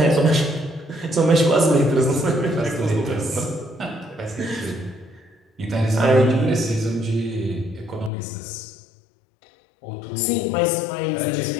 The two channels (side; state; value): right; drops out; at 8.1 s